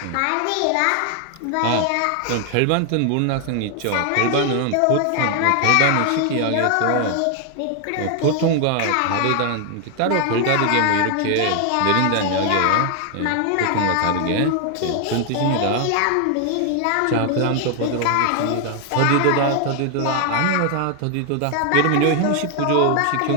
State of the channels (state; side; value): different; both; correlation 0.00